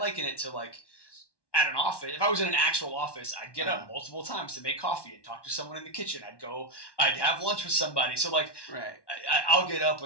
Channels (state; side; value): late; right; 1.1 ms